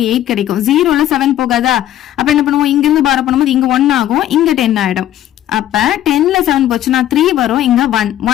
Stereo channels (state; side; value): quieter; right; 12.4 dB